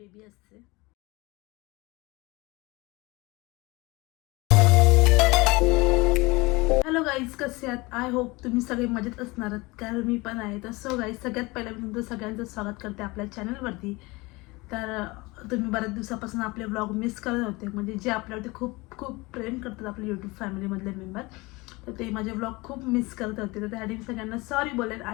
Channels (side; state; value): right; quieter; 23.5 dB